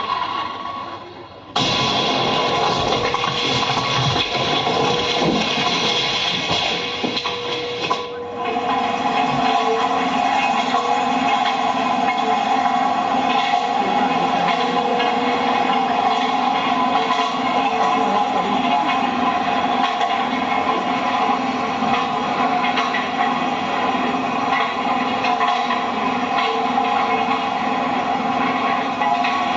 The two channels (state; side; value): identical; both; correlation 1.00